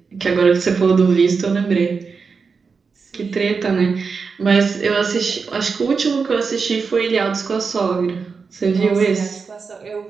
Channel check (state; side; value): quieter; left; 5.1 dB